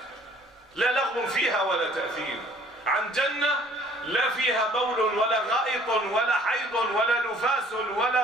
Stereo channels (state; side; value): normal; both; correlation 0.56